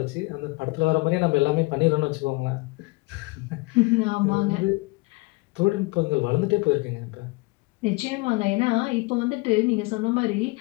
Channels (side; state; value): right; quieter; 25.1 dB